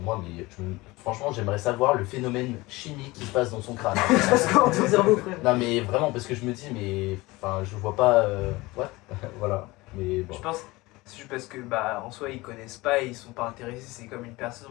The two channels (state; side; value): quieter; right; 21.3 dB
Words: moi, mais franchement, j'aimerais savoir le phénomène chimique qui se passe dans son crâne. Parce que dans ton cerveau, frère. Non, mais vraiment, parce que je me dis, mais enfin, je vois pas. What. Voilà, mais bon. Je pense, c'est juste parce que bah en soi ils connaissent pas et ils sont pas intéressés. C'est comme une personne,